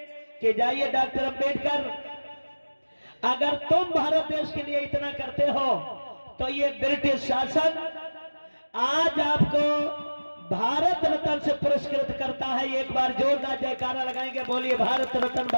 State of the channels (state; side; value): inverted; both; correlation -1.00